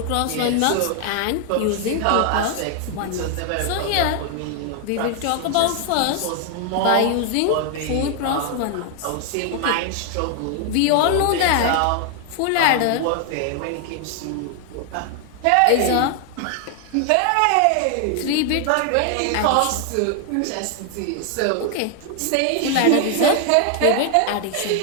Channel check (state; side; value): different; both; correlation 0.00